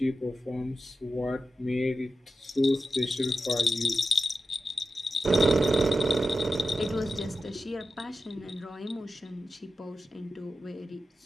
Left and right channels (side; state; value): both; normal; correlation 0.91